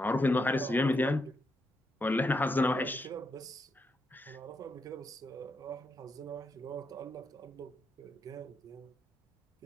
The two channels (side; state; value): both; normal; correlation 0.81